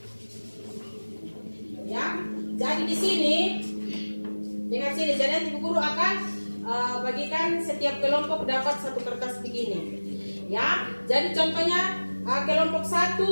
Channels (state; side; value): inverted; both; correlation -1.00